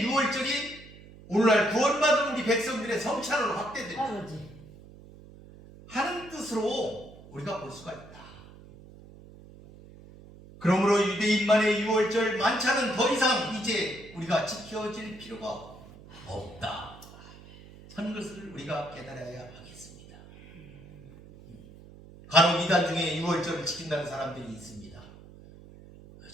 6월절이 오늘날 구원받은 우리 백성들의 성찬으로 확대된다 하는 뜻으로 우리가 볼 수가 있다. 그러므로 유대인만의 6월절 만찬은 더 이상 이제 우리가 지켜질 필요가 없다 하는 것을 우리가 깨달아야 하겠습니다. 간혹 이단 중에 6월절을 지킨다는 사람들이 있습니다.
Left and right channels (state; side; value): noise; right; hum, 20 dB below the sound